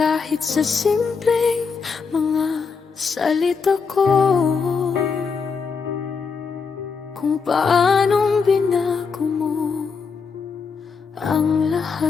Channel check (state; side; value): quieter; right; 5.4 dB